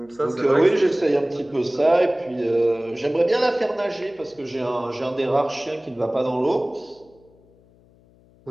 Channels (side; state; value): left; noise; hum, 30 dB below the sound